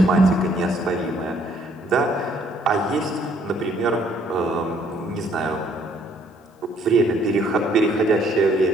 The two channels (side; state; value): both; normal; correlation 0.64